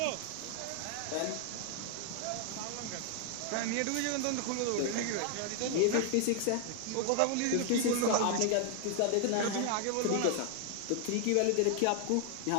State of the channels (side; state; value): both; different; correlation 0.00